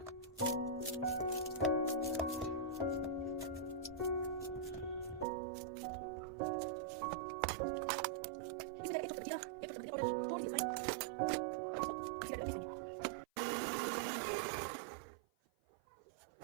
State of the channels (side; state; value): left; drops out; at 5.2 s